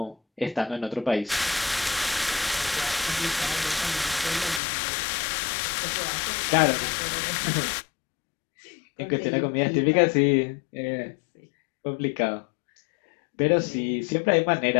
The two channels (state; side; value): drops out; right; at 4.6 s